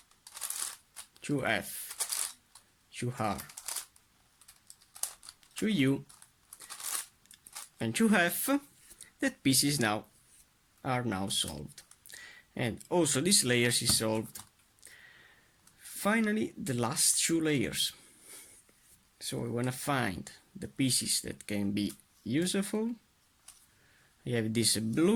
shu F, shu har, shu U, and shu hef, that pieces now are now solved, and also this layers is solved. Finally the last two layers. So I want to find the pieces that can be useful. I have this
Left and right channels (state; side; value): identical; both; correlation 1.00